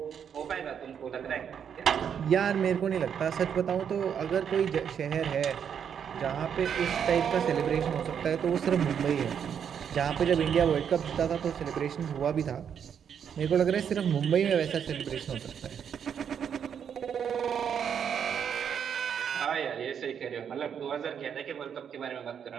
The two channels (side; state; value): left; quieter; 7.9 dB